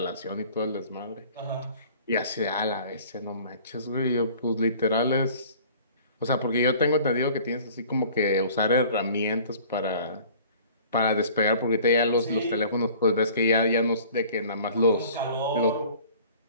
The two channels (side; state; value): both; inverted; correlation -0.49